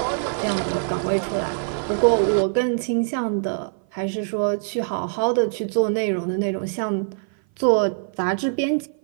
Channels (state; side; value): silent; left; 56 dB below the other